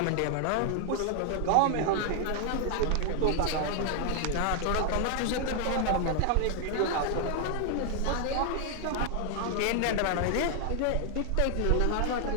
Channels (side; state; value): both; different; correlation 0.00